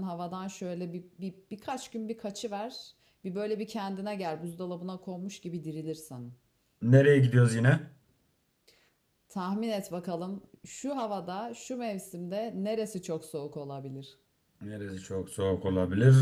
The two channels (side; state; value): both; identical; correlation 1.00